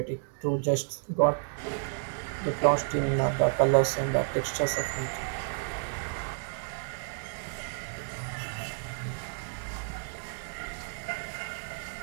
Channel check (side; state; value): left; silent; digital silence